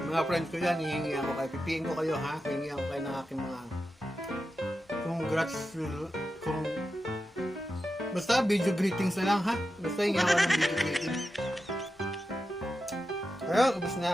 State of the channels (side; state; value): both; normal; correlation 0.90